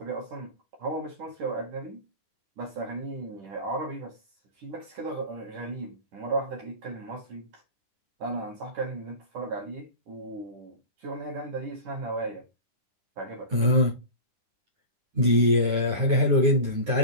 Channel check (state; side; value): late; left; 9.6 ms